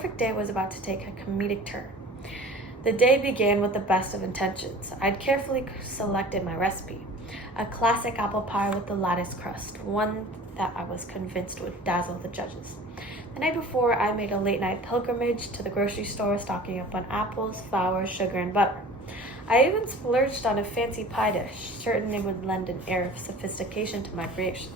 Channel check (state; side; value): normal; both; correlation 0.43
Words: day was about to take a comedic turn. The day began with the best of intentions. I'd carefully selected my recipe, a classic apple pie with the lattice crust, one that I was convinced would dazzle the judges. The night before, I made a late-night pilgrimage to the grocery store, stocking up on apples, flour, sugar, and butter. I even splurged on a fancy pie dish, certain it would lend an air of sophistication to my creation.